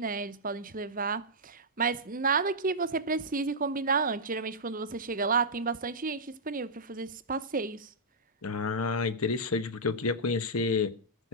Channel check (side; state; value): both; normal; correlation -0.11